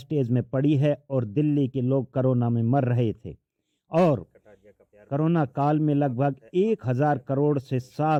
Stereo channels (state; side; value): identical; both; correlation 1.00